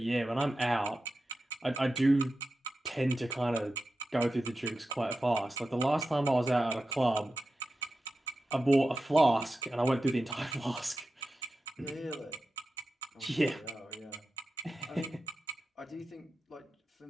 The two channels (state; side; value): normal; both; correlation 0.92